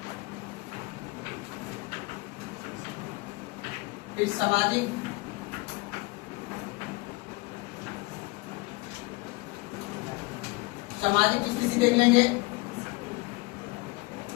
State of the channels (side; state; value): right; quieter; 24.7 dB